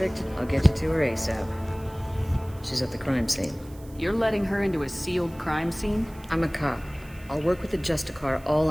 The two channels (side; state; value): right; noise; hiss, 24 dB below the sound